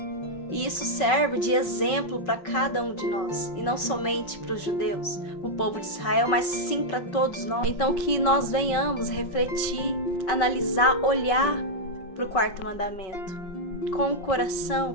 E isso serve de exemplo para cada um de nós, e não somente para os judeus, o povo de Israel, mas sim para todos nós. Então que nós venhamos refletir, analisar, olhar para o quarto mandamento com o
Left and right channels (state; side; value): late; right; 5.3 ms